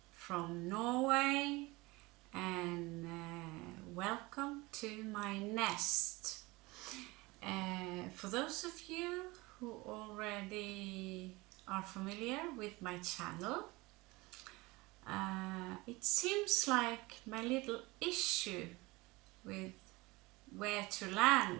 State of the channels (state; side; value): quieter; left; 22.7 dB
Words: from Norway, and welcome to my nest. For those of you who already are familiar with my channel, it seems like my little issue with where to